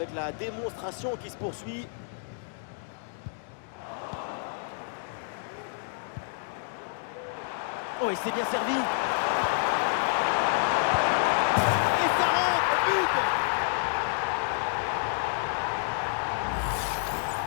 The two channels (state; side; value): silent; right; 59 dB below the other